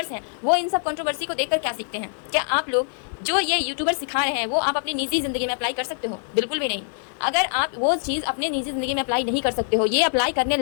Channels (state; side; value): silent; right; 60 dB below the other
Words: हैं वो इन सब कंट्रोवर्सी को देखकर क्या सीखते हैं? क्या आप लोग जो ये यूट्यूबर सिखा रहे हैं वो आप अपनी निजी जिंदगी में अप्लाई कर सकते हो? बिल्कुल भी नहीं। अगर आप वो चीज़ अपने निजी जिंदगी में अप्लाई नहीं कर सकते हो, ये अप्लाई करने